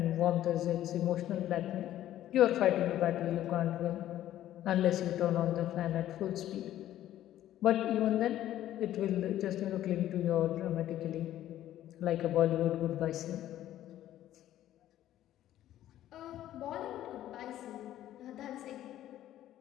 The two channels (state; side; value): quieter; right; 12.8 dB